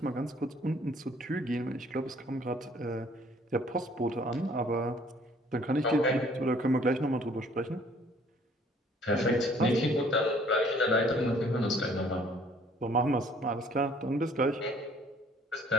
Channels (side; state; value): both; normal; correlation 0.58